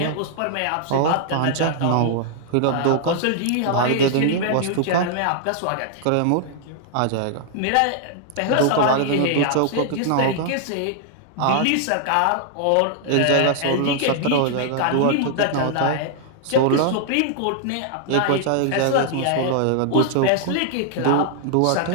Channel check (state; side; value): different; both; correlation -0.01